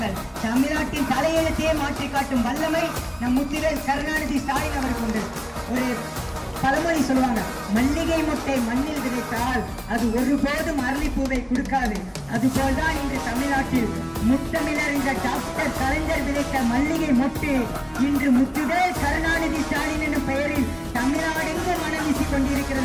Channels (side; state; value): both; identical; correlation 1.00